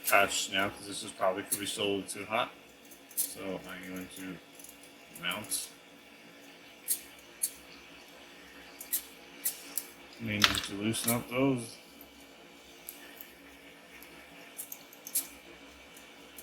Touch now because this is probably could be still a little too hot, so I'm going to mount. May need to loosen up those.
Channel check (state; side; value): identical; both; correlation 1.00